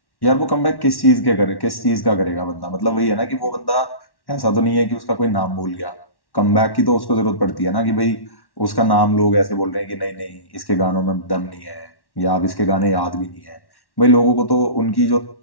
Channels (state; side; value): late; right; 1.1 ms